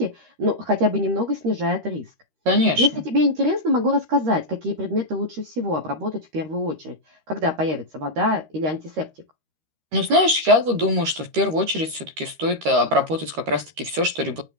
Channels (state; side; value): late; left; 13 ms